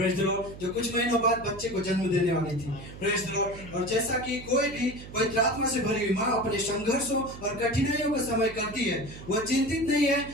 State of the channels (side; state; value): right; noise; hum, 14 dB below the sound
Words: द लॉर्ड, जो कुछ महीनों बाद बच्चे को जन्म देने वाली थी। Praise the Lord. और जैसा कि कोई भी पवित्र आत्मा से भरी हुई माँ अपने संघर्षों और कठिनाइयों का समय करती है, वह चिंतित नहीं है,